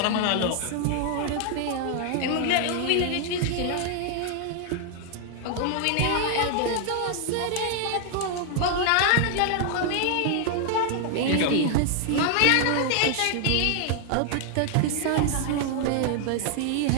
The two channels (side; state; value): both; different; correlation 0.00